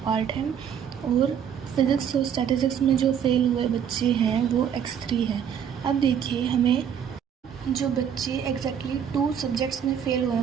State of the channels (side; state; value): left; quieter; 8.4 dB